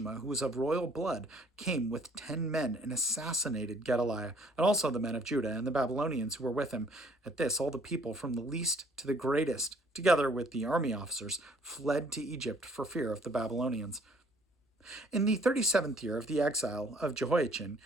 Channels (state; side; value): normal; both; correlation 0.59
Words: who was of royal blood, came with 10 men and assassinated Gedaliah, and also the men of Judah and the Babylonians who were with him. At this, all the people, from the least to the greatest, together with the army officers, fled to Egypt for fear of the Babylonians. In the 37th year of the exile of Jehoiachin,